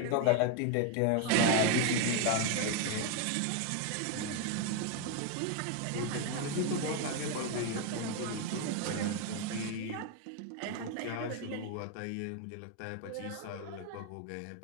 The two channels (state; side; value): different; both; correlation 0.01